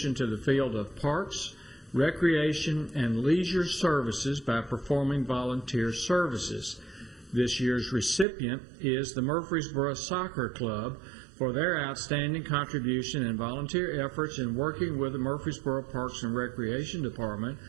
to the field of parks, recreation, and leisure services by performing volunteer services. This year's recipient is the Murfreesboro Soccer Club for their outstanding contribution and volunteer efforts in working with the Murfreesboro Parks and Recreation Department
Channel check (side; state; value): left; drops out; at 8.2 s